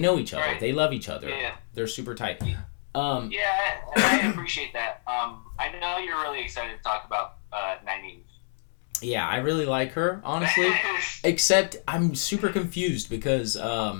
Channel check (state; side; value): silent; right; 60 dB below the other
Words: each other. Right. They love each other. Yeah. They're super tight. Yeah, I appreciate that. I know you're really excited to talk about Nynaeve. Yeah, I really like her, honestly. Except I'm super confused because